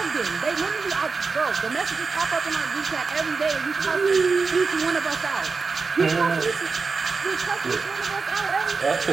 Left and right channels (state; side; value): quieter; left; 4.6 dB